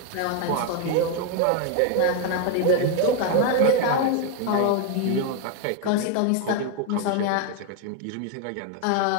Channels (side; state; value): both; different; correlation 0.01